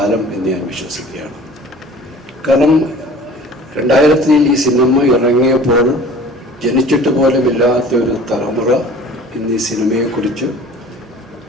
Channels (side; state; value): both; normal; correlation 0.46